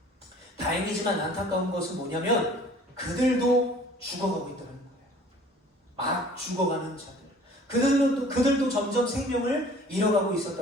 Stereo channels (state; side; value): normal; both; correlation 0.50